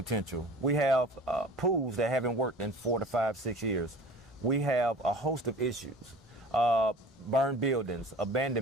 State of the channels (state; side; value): normal; both; correlation 0.42